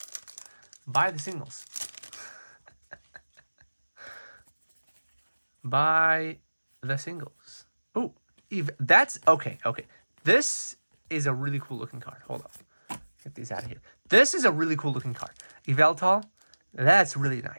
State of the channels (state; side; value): inverted; both; correlation -1.00